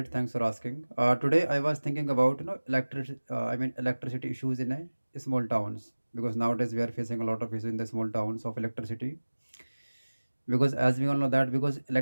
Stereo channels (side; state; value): both; inverted; correlation -1.00